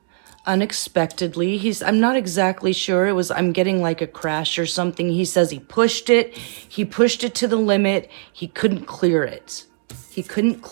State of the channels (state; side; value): silent; left; 58 dB below the other